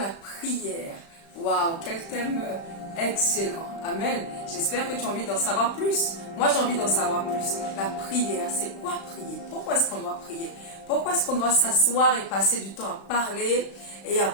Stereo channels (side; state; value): right; late; 35 ms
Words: prière. Waouh, quel thème excellent. Amen. J'espère que tu as envie d'en savoir plus. Moi, j'ai envie d'en savoir plus. La prière, c'est quoi prier? Pourquoi est-ce qu'on doit prier? Pourquoi est-ce qu'on doit s'asseoir et passer du temps à parler et à